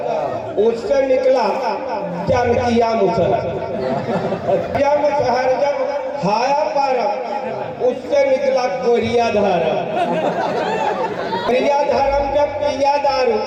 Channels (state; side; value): identical; both; correlation 1.00